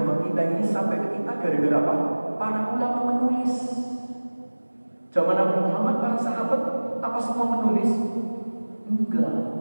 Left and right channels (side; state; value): both; inverted; correlation -1.00